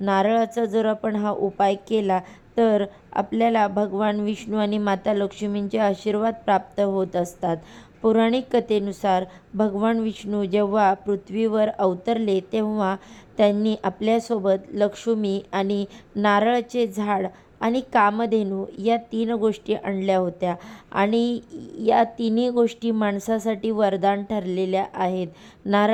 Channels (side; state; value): both; identical; correlation 1.00